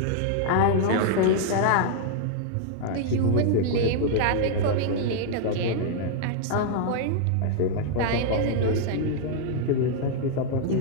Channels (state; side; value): different; both; correlation -0.01